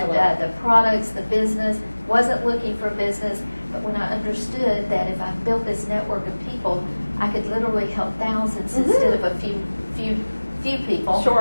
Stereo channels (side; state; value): both; inverted; correlation -1.00